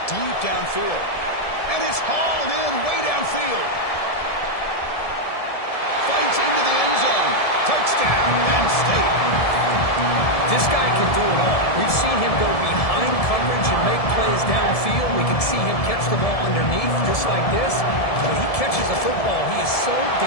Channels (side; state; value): right; late; 1.7 ms